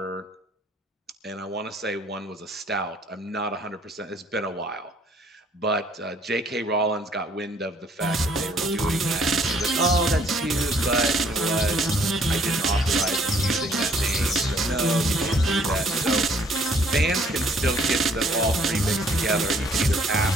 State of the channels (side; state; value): both; normal; correlation 0.62